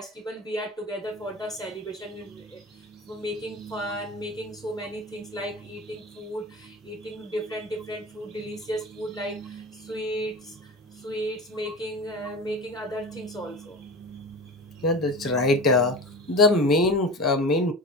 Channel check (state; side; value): normal; both; correlation 0.31